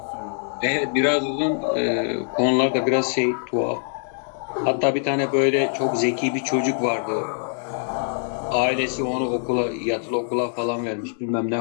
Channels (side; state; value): right; silent; digital silence